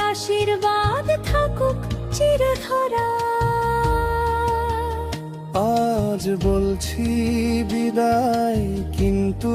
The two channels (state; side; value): identical; both; correlation 1.00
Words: আশীর্বাদ থাকুক চিরধরা। আজ বলছি বিদায়, কিন্তু